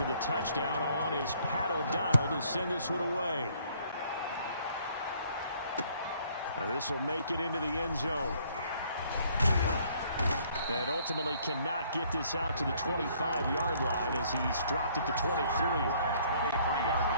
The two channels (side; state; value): both; inverted; correlation -0.62